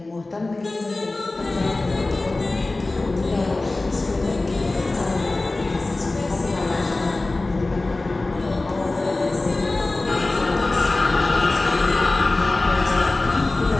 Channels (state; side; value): quieter; right; 3.1 dB